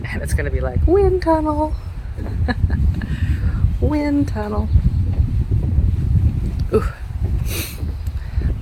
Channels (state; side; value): identical; both; correlation 1.00